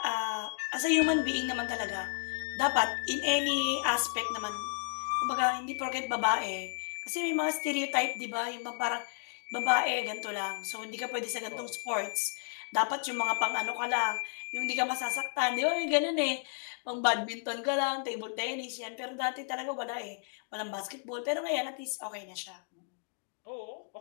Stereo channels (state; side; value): silent; right; digital silence